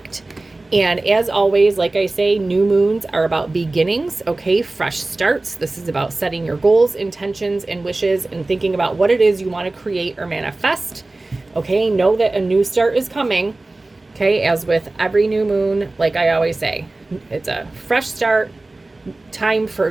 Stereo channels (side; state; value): left; quieter; 3.0 dB